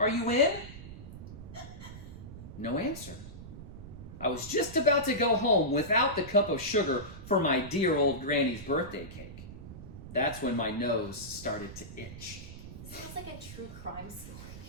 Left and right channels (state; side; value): noise; right; rumble, 13 dB below the sound